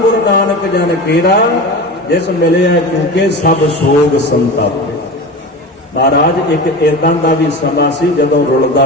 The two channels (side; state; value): both; normal; correlation 0.29